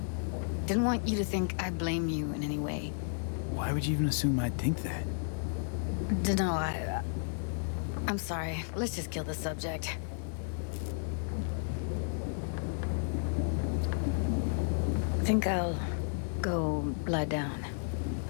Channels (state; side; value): silent; right; digital silence